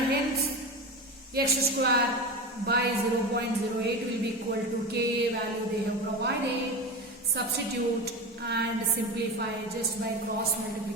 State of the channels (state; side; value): normal; both; correlation 0.24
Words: hence X square by 0.08 will be equal to Ka value they have provided. Substitute and simplify just by cross